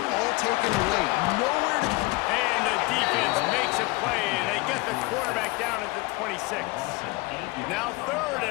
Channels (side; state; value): right; quieter; 23.4 dB